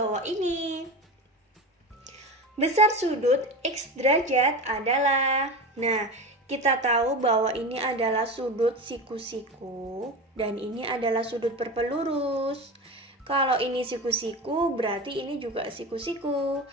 ini. Besar sudut X derajat adalah... Nah, kita tahu bahwa ini adalah sudut siku-siku dan ini adalah sudut berpelurus. Kalau ini siku-siku, berarti ini juga siku-siku.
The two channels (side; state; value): both; normal; correlation 0.26